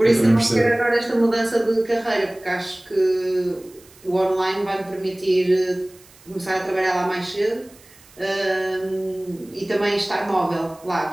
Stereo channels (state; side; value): noise; right; hiss, 26 dB below the sound